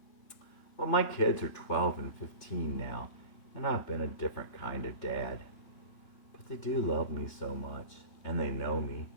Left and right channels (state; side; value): late; right; 3.5 ms